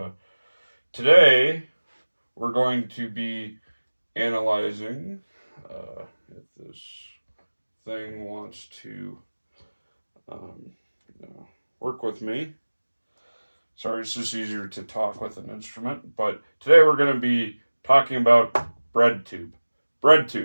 today we're going to be analyzing if this thing wants to um, work with me. Sorry, it's just easier to talk with an instrument. But today we're going to be talking about BreadTUBE.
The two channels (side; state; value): both; inverted; correlation -1.00